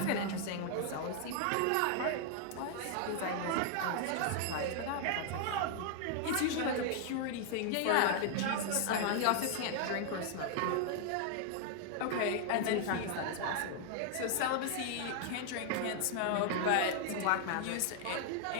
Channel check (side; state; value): both; different; correlation 0.00